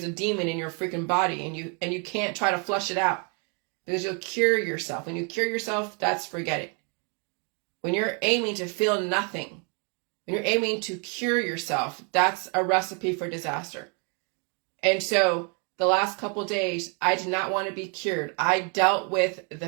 a demon in your freaking body, and you can't try to flush it out, because you'll cure yourself. When you cure yourself, that's forget it. When you're aiming to feel nothing, when you're aiming to cure yourself, that's a recipe for disaster. And so the last couple of days, I did not want to be cured. I dealt with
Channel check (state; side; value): quieter; left; 36.6 dB